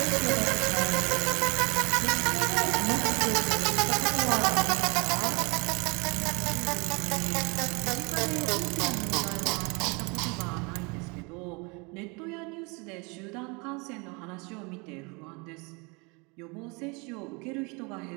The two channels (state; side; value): quieter; left; 29.6 dB